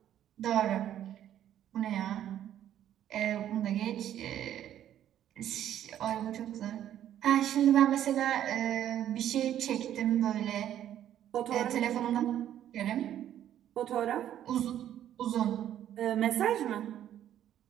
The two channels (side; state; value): left; quieter; 11.1 dB